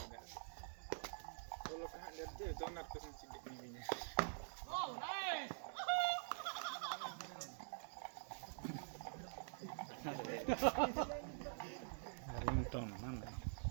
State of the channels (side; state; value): left; silent; digital silence